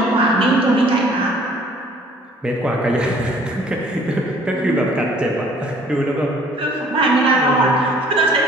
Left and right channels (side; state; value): both; normal; correlation 0.56